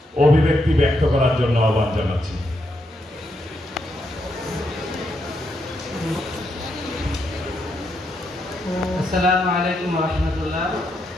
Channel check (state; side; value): normal; both; correlation 0.80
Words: অভিব্যক্তি ব্যক্ত করার জন্য আহ্বান জানাচ্ছি। আসসালামু আলাইকুম ওয়া রাহমাতুল্লাহ।